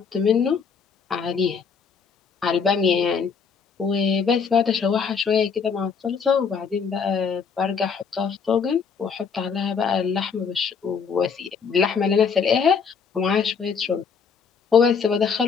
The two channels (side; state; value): right; quieter; 6.0 dB